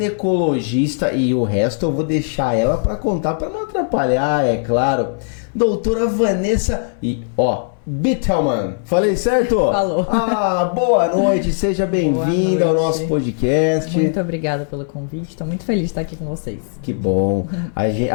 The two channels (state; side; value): silent; right; 67 dB below the other